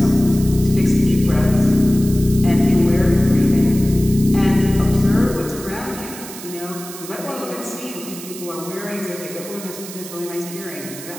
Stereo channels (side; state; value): right; noise; hiss, 13 dB below the sound